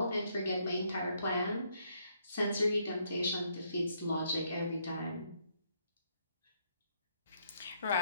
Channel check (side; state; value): both; inverted; correlation -0.72